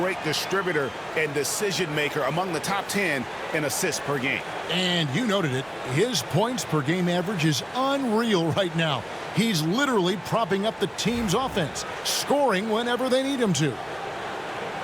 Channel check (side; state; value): both; identical; correlation 1.00